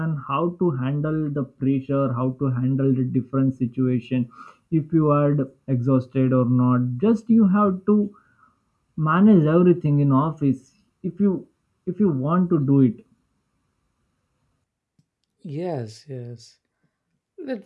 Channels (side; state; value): both; identical; correlation 1.00